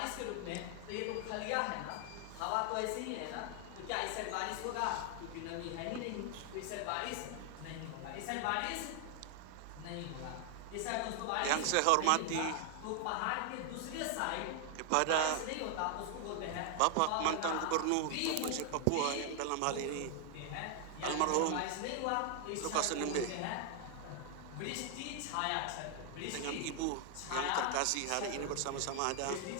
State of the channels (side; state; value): both; different; correlation 0.00